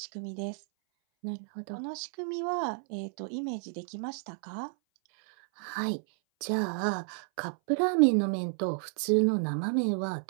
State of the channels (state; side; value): silent; left; 57 dB below the other